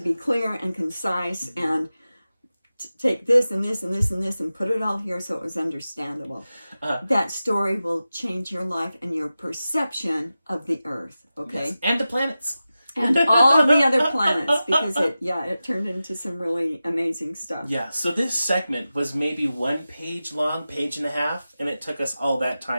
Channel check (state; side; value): inverted; both; correlation -0.94